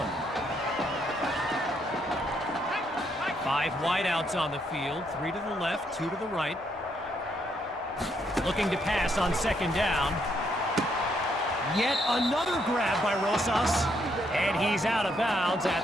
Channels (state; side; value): normal; both; correlation 0.74